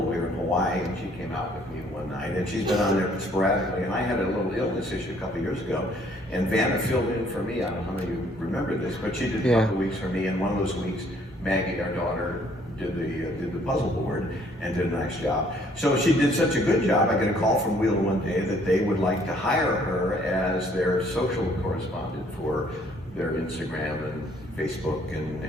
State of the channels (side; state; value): both; normal; correlation 0.62